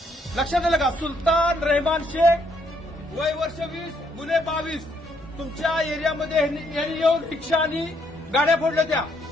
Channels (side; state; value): both; normal; correlation 0.71